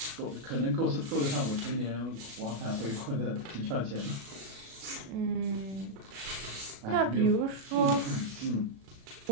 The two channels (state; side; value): late; left; 36 ms